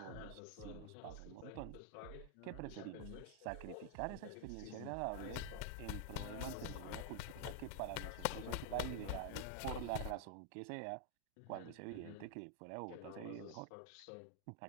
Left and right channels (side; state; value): both; different; correlation 0.00